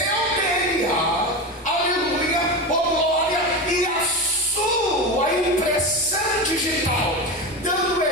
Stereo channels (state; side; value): normal; both; correlation 0.21